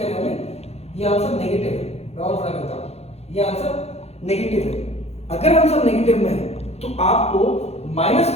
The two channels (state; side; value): late; right; 0.30 ms